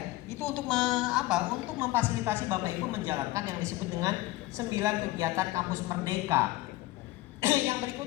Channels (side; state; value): right; quieter; 18.1 dB